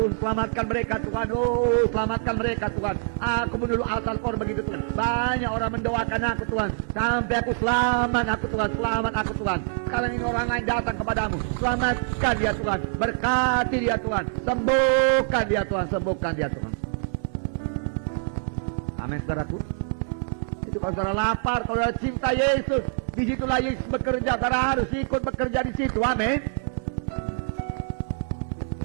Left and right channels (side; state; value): left; silent; 61 dB below the other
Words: selamatkan mereka Tuhan. Oh, selamatkan mereka Tuhan. Aku menurut Al-Qur'an begitu Tuhan. Banyak orang mendoakan aku Tuhan, sampai aku selamat aku Tuhan, selamat aku Tuhan. Kalau ini orang lain datang kepadamu, selamatkan dia Tuhan, berkati dia Tuhan, sembuhkan dia Tuhan, sembuhkan dia Tuhan. Amin, saudaraku. Itu kalau saudara lapar, kalau saudara cinta Yesus, disitulah Yesus bekerja. Saudara harus ikut bekerja di situ. Amin.